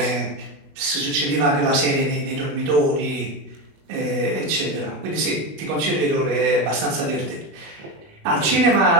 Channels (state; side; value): late; left; 21 ms